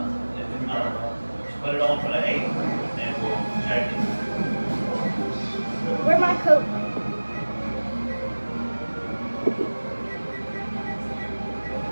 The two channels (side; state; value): both; inverted; correlation -1.00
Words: If not, put it on for the 8 and we'll check it. Where's my coat?